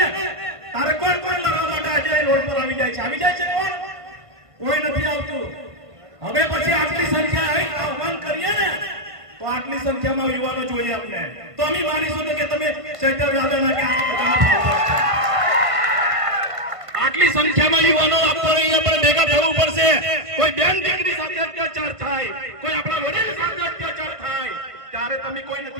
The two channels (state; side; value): late; left; 1.5 ms